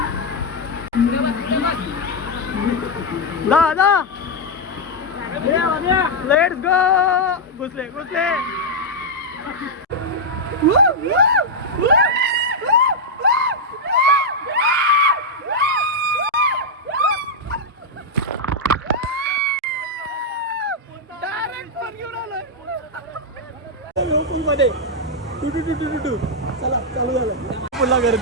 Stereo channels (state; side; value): normal; both; correlation -0.02